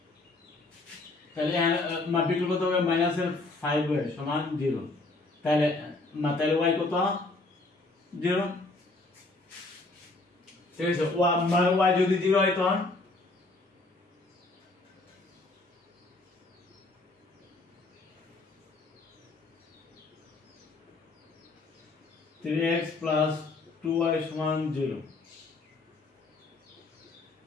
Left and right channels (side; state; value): right; quieter; 3.2 dB